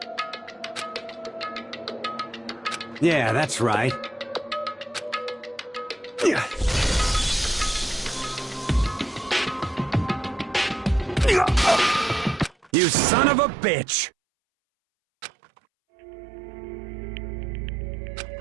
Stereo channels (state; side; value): drops out; left; at 12.7 s